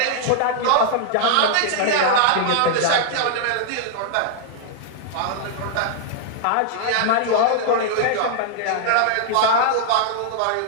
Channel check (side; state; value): both; different; correlation -0.01